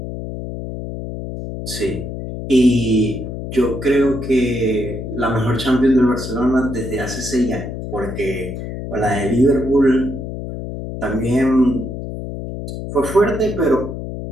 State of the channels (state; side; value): noise; left; hum, 7 dB below the sound